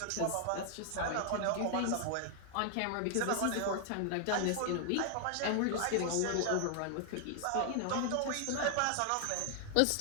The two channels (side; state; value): both; different; correlation 0.00